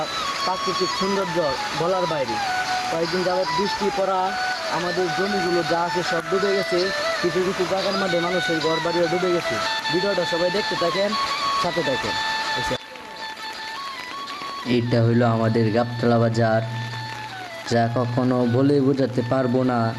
প্রাকৃতিক সৌন্দর্য বলার বাইরে। কয়েকদিন যাবৎ বৃষ্টি পড়া আমাদের জমিগুলো যা আছে সব ডুবে গেছে। কিছু কিছু জায়গার মধ্যে মানুষের ঘর বাড়িও ডুবে গেছে। ভিডিওটা সবাই দেখতে থাকেন, সাথে থাকেন। এইটা হইলো আমাদের গাবতলা বাজার, যা কখনো বলে বোঝাতে পারবো না।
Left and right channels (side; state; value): both; identical; correlation 1.00